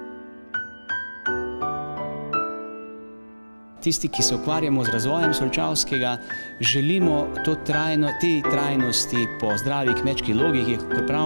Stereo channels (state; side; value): inverted; both; correlation -1.00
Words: Tisti, ki se ukvarjamo z razvojem Solčavskega, želimo te trajnosti po zdravi kmečki logiki, kot